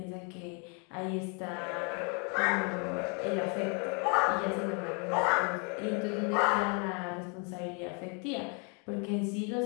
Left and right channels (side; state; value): right; quieter; 36.1 dB